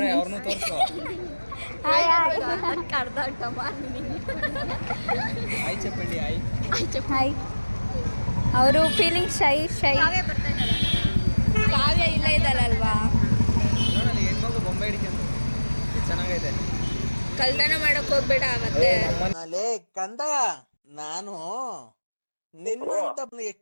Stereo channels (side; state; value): both; inverted; correlation -1.00